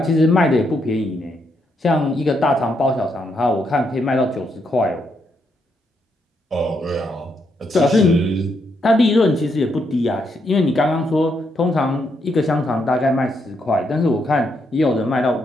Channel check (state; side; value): normal; both; correlation 0.78